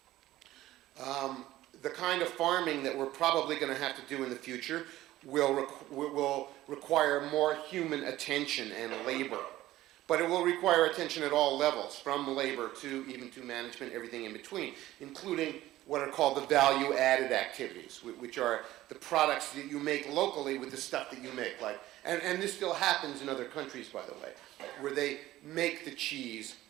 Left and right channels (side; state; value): left; quieter; 15.4 dB